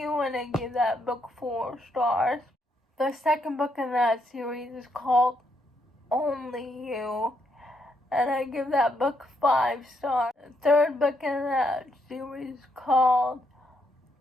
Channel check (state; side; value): normal; both; correlation 0.76